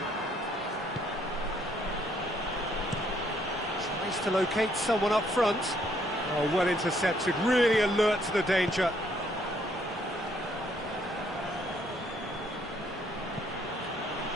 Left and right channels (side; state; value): both; normal; correlation 0.68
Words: Tries to locate someone up front. Oh, well intercepted, really alert to the danger.